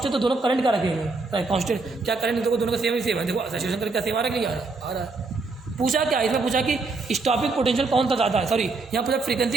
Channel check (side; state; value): left; quieter; 3.7 dB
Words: तो दोनों करंट क्या रखेंगे, कांस्टेंट। क्या करंट देखो दोनों का सेम ही सेम है, देखो सैचुरेशन करंट क्या सेम आ रहा है कि नहीं आ रहा है। पूछा क्या इसमें, पूछा कि स्टॉपिंग पोटेंशियल कौन सा ज़्यादा है, सॉरी यहाँ पूछा